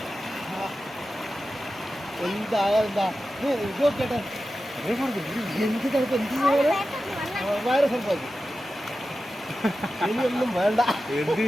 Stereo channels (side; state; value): both; normal; correlation 0.93